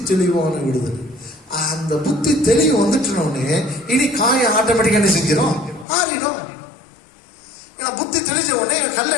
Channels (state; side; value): drops out; right; at 5.9 s